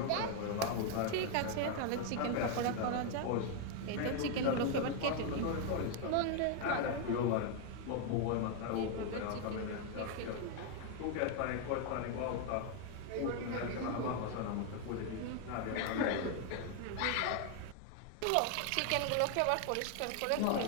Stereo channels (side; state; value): both; different; correlation 0.00